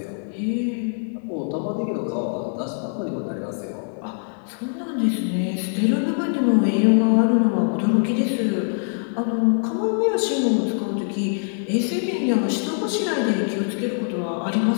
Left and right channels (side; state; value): right; silent; digital silence